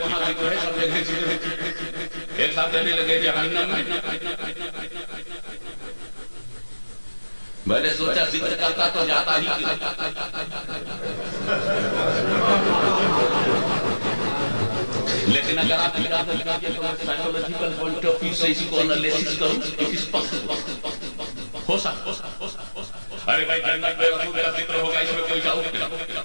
ذکر ہے, سب جگہ ذکر ہے. ایک ساتھ کہنے لگے جہنم میں, میں نے سوچا ذکر کرتا تو جاتا ہی کیوں. لیکن اگر آپ اجازت دیجیے تو میں سائیکولوجیکل پوائنٹ آف ویو سے اس کو انالیسس کروں, اٹ از پاسبل, ہو سکتا. ارے بھائی جنت میں رسول کا ذکر ہوگا, اس میں کوئی ڈاؤٹ نہیں,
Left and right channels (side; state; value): both; inverted; correlation -1.00